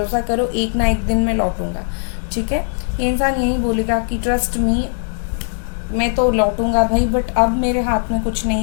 करो, एक ना एक दिन मैं लौटूंगा, ठीक है। ये इंसान यही बोलेगा कि ट्रस्ट मी, मैं तो लौटूंगा भाई, बट अब मेरे हाथ में कुछ नहीं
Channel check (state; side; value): silent; right; 67 dB below the other